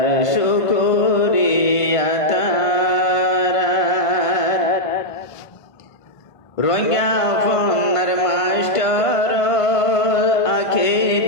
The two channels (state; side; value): late; right; 1.5 ms